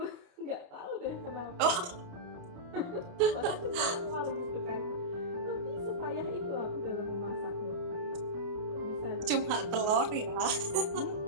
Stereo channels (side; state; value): left; late; 28 ms